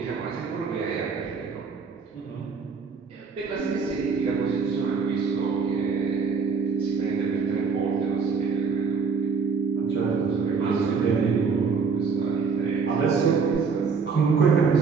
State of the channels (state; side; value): quieter; left; 5.4 dB